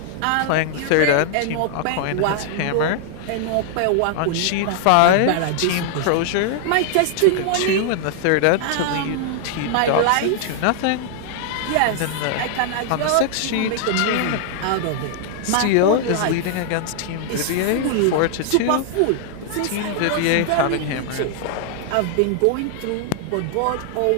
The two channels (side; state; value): both; different; correlation 0.00